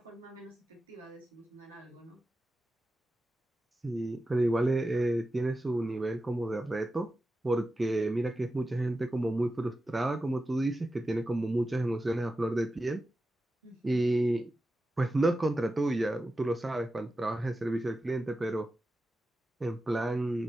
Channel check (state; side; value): normal; both; correlation 0.92